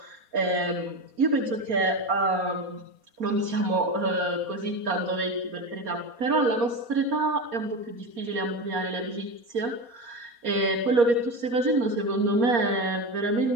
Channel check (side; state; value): left; late; 4.2 ms